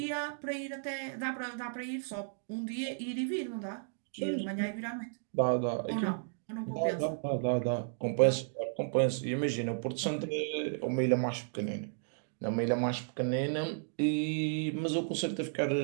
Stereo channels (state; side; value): silent; left; digital silence